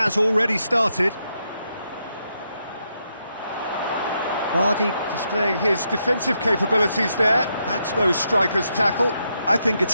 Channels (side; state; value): both; inverted; correlation -0.81